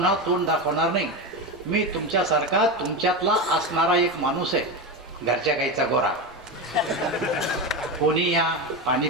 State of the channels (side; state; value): both; normal; correlation 0.18